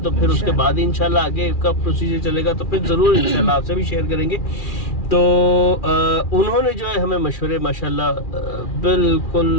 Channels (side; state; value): right; late; 2.4 ms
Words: तो फिर उसके बाद इंशाल्लाह आगे का प्रोसीजर चलेगा, तो फिर ज़रूर इंशाल्लाह आपसे भी शेयर करेंगे। तो उन्होंने जो है हमें मशवरे माशाल्लाह बिल्कुल